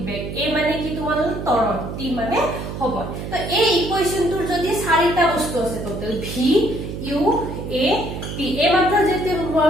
বেগ, এ মানে কি তোমালোকৰ ত্বৰণ, টি মানে সময়। তো এই ইকুৱেশ্যনটোৰ যদি 4টা বস্তু আছে total, V U A T. এই মাত্ৰ যেতিয়া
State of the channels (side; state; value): right; noise; hum, 7 dB below the sound